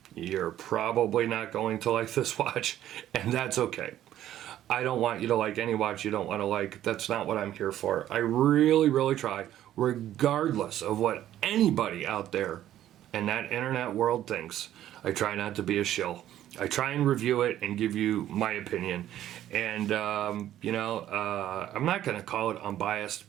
you're probably not going to like this watch, and that's okay. I don't want you to like any watch you don't want to like. That's not what I'm here for. I really, really try, regardless of what anybody out there in that internet world thinks. I try not to be a shill. I try and review it and give you my opinion. And, you know, I'm not going to call it unbiased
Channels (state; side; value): quieter; left; 12.3 dB